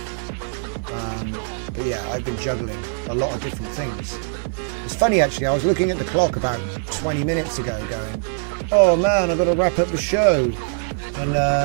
But yeah, I've been juggling a lot of different things. It's funny actually, I was looking at the clock about 20 minutes ago going, oh man, I've got to wrap up the show. And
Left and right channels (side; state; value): left; silent; 64 dB below the other